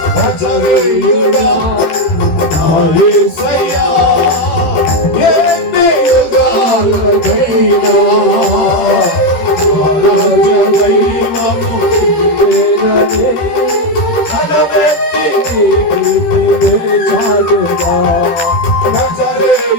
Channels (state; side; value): late; right; 13 ms